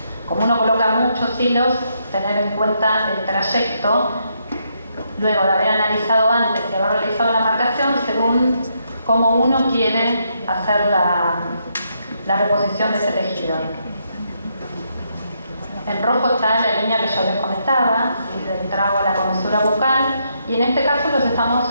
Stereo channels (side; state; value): both; inverted; correlation -0.77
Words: como uno coloca muchos hilos, tener en cuenta el trayecto, luego de haber analizado antes y haber realizado la marcación según cómo uno quiere hacer la reposición de ese tejido. En rojo está la línea que yo les comentaba, ¿sí?, del trago a la comisura bucal, y en este caso los estamos